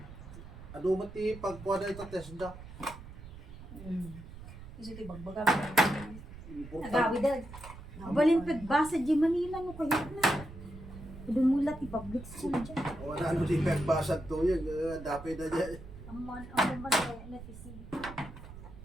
Ado mati pagkuha na ito Tesla. Kasi ito bagbaga. Nagawi dad. Balin pagbasa di Manila no kayo na. Dumulat ti public school dyan. Wala ano di pagbasag to yan. Dapay na dyan. Ang man na tisi.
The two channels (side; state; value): right; noise; rumble, 14 dB below the sound